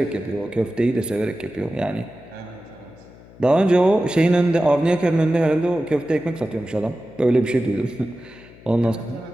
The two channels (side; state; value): left; noise; hum, 22 dB below the sound